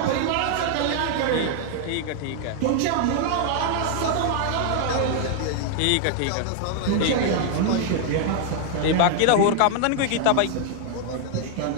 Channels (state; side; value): different; both; correlation 0.00